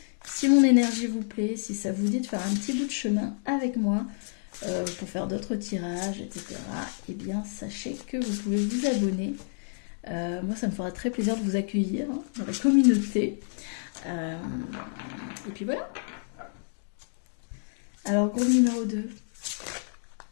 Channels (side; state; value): right; silent; digital silence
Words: Si mon énergie vous plaît, si ça vous dit de faire un petit bout de chemin avec moi pour faire d'autres tirages, etc., eh bien, sachez que vous pouvez vous abonner Moi, ça me fera très plaisir de vous accueillir hein, dans la communauté. Et puis voilà. Alors, groupe numéro 2.